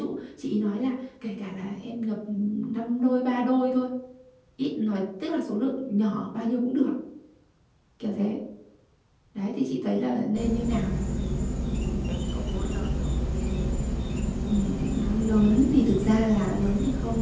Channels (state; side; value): identical; both; correlation 1.00